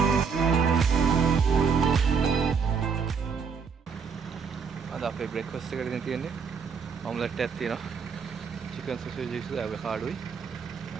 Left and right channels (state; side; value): quieter; left; 5.9 dB